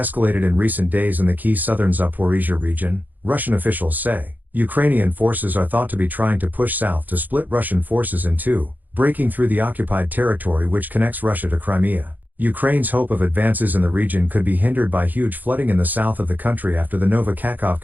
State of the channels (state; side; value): late; left; 0.084 ms